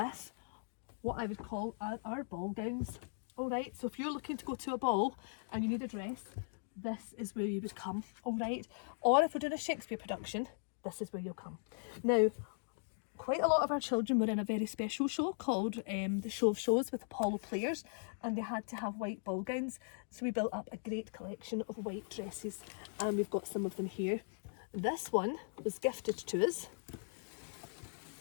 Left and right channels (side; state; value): right; silent; digital silence